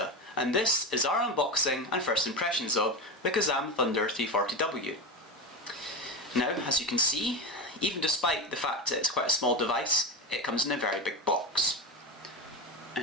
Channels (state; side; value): normal; both; correlation 0.19